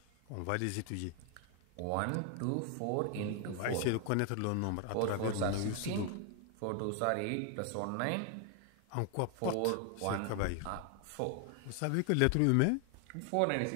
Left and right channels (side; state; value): both; different; correlation 0.00